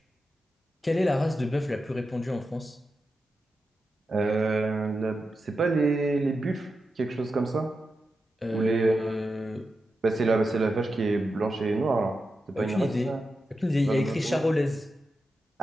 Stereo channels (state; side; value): normal; both; correlation 0.89